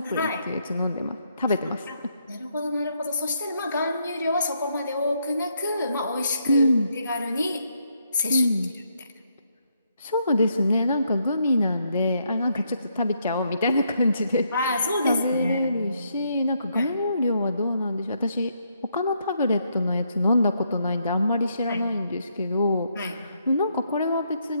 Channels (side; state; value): both; inverted; correlation -0.76